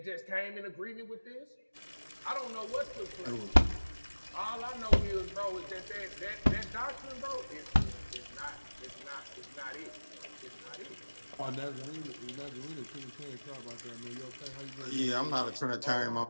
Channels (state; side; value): inverted; both; correlation -1.00